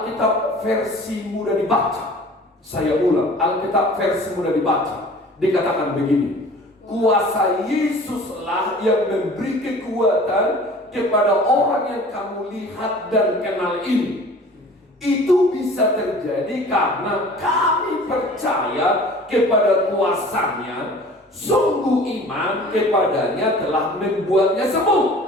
versi mudah dibaca. Saya ulang, Alkitab versi mudah dibaca. Dikatakan begini, kuasa Yesuslah yang memberi kekuatan kepada orang yang kamu lihat dan kenal ini. Itu bisa terjadi karena kami percaya kepada kuasanya, sungguh iman kepadanya telah membuatnya sembuh.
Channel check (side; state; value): both; normal; correlation 0.45